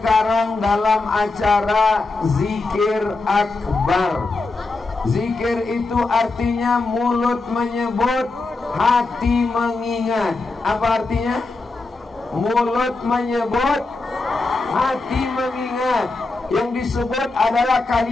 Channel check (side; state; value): right; quieter; 3.5 dB